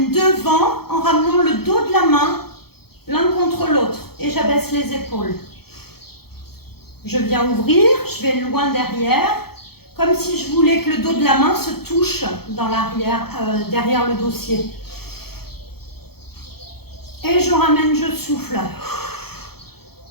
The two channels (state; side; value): late; right; 0.96 ms